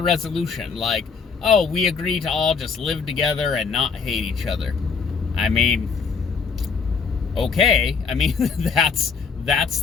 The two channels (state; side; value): quieter; right; 5.4 dB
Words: resolution? Like, oh, we agree to all just live together and not hate each other. I mean, okay. I mean, that's